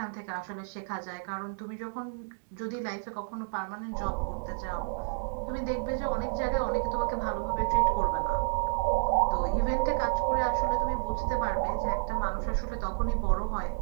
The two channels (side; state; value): left; silent; digital silence